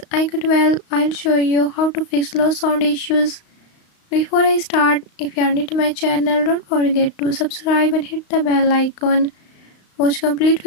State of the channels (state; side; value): late; right; 35 ms